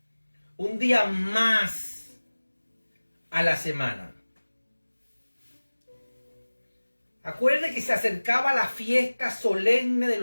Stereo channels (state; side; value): inverted; both; correlation -1.00